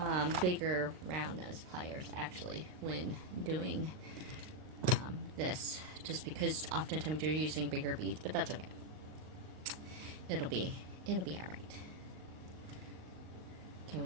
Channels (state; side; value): late; left; 38 ms